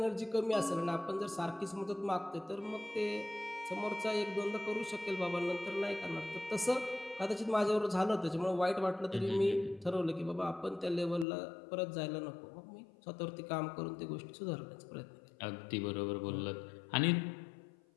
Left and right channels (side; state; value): right; drops out; at 11.2 s